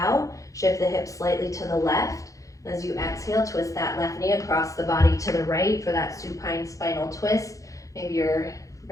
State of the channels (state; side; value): late; right; 0.16 ms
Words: Shift the hips slightly to the left. As you exhale, twist that left knee across the body to the right for that supine spinal twist. Maybe you're